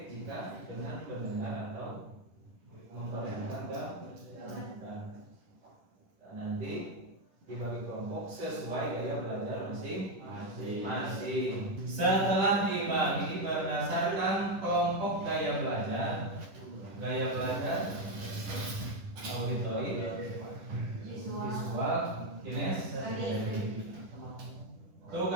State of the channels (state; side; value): late; left; 10 ms